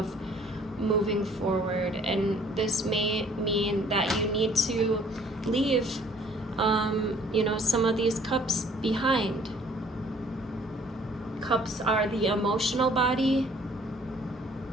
moving forward. And this may mean that you need to leave, some of these cups behind. Cups are the emotional body.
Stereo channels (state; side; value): normal; both; correlation 0.57